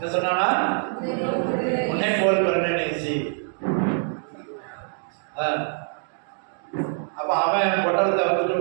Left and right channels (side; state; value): left; silent; 62 dB below the other